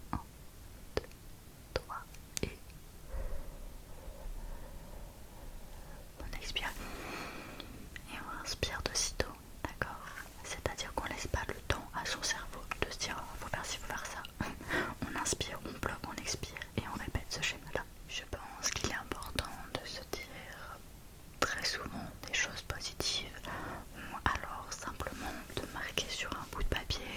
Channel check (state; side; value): identical; both; correlation 1.00